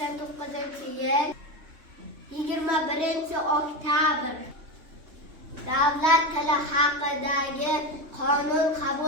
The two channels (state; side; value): late; left; 3.2 ms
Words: 21-oktyabr Davlat tili haqidagi qonun